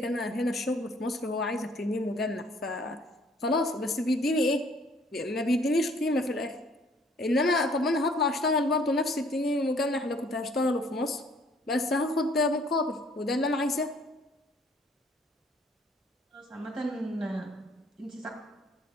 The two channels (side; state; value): both; normal; correlation 0.60